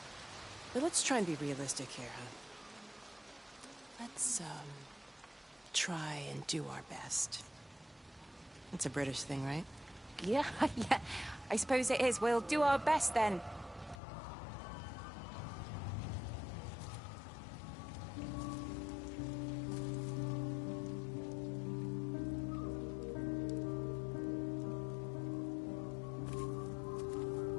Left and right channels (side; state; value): right; drops out; at 14.0 s